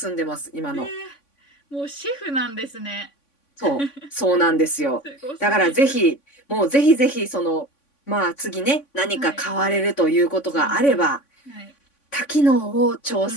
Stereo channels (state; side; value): late; right; 3.5 ms